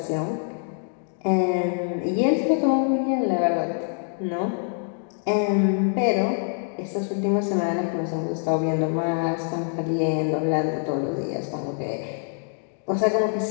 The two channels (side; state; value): right; silent; 62 dB below the other